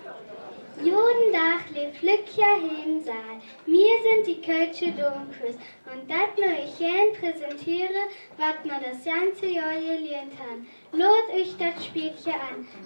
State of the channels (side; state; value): both; inverted; correlation -1.00